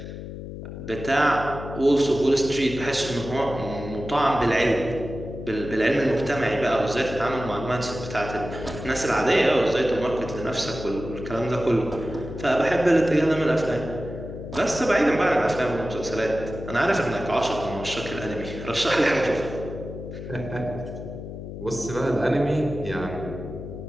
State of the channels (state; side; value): noise; left; hum, 10 dB below the sound